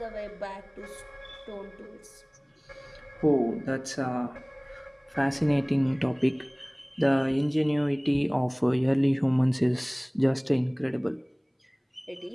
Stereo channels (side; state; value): both; identical; correlation 1.00